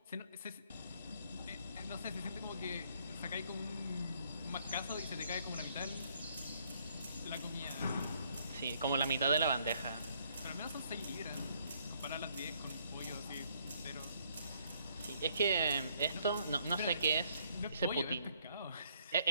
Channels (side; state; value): both; inverted; correlation -0.67